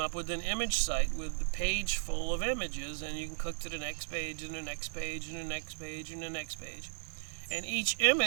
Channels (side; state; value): left; silent; digital silence